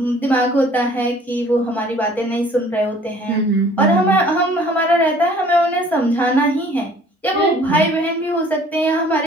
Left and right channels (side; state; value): both; normal; correlation 0.54